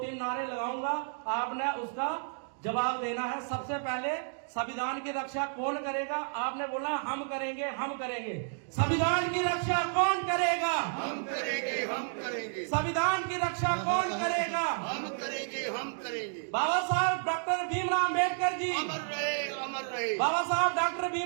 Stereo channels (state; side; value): silent; left; digital silence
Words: नारे लगाऊंगा, आपने उसका जवाब देना है। सबसे पहले संविधान की रक्षा कौन करेगा? आपने बोला हम करेंगे, हम करेंगे। संविधान की रक्षा कौन करेगा? हम करेंगे, हम करेंगे। संविधान की रक्षा कौन करेगा? हम करेंगे, हम करेंगे। बाबा साहब डॉक्टर भीमराव अम्बेडकर जी अमर रहे, अमर रहे। बाबा साहब डॉक्टर